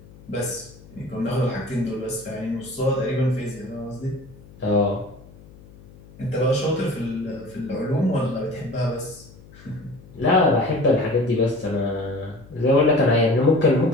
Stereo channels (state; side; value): noise; left; hum, 22 dB below the sound